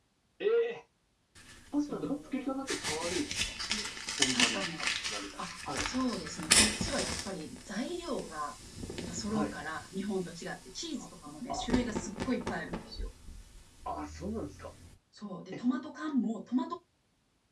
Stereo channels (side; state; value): both; identical; correlation 1.00